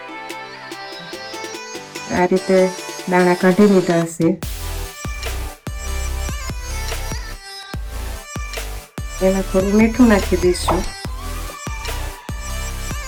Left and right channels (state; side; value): identical; both; correlation 1.00